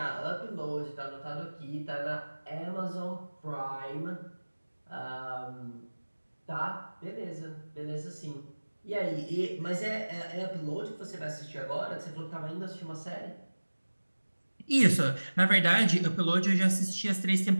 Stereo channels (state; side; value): inverted; both; correlation -1.00